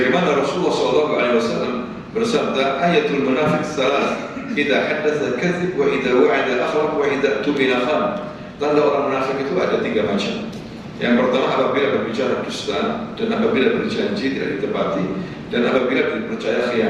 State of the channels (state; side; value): identical; both; correlation 1.00